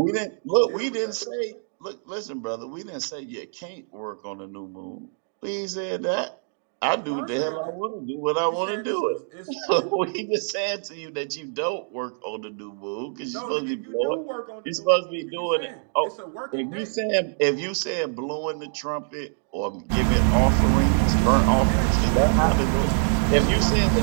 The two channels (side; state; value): left; silent; digital silence